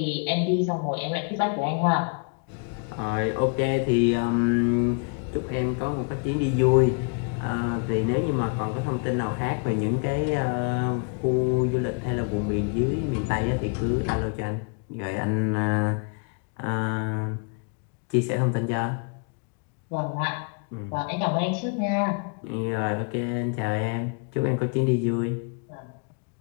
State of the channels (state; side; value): quieter; right; 36.3 dB